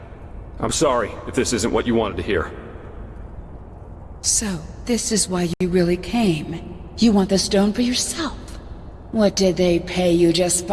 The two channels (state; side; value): identical; both; correlation 1.00